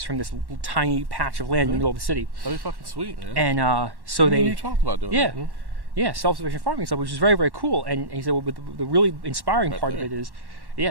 from this tiny patch of land in the middle of the city. That'd be fucking sweet, man. And so You talked about doing that. Yeah, self-sufficient farming stuff, which is very, very cool. And he said, well, but the really inspiring part of it is,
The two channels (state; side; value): late; left; 1.1 ms